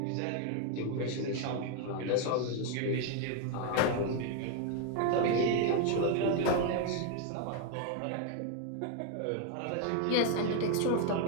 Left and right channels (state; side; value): different; both; correlation 0.01